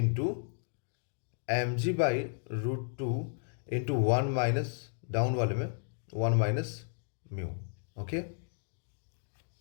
M G by √2 into 1 minus, down वाले में 1 माइनस म्यू, ओके।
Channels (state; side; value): silent; right; digital silence